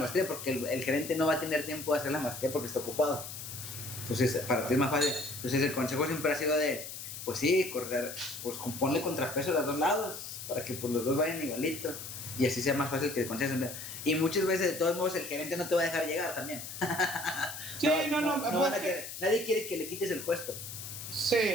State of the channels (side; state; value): left; noise; hiss, 9 dB below the sound